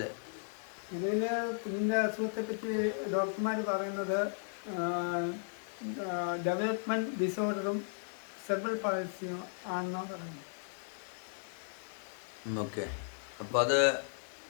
കുഞ്ഞിൻ്റെ അസുഖത്തെ പറ്റി ഡോക്ടർമാർ പറയുന്നത് ഡെവലപ്മെൻറ്റ് ഡിസോർഡറും സെർബൽ പാൾസിയും ആണെന്നാണ് പറയുന്നത്. ഓക്കെ. അപ്പോൾ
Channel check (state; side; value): silent; right; digital silence